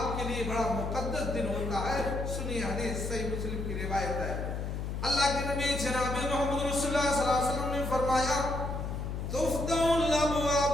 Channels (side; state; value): left; noise; hum, 4 dB below the sound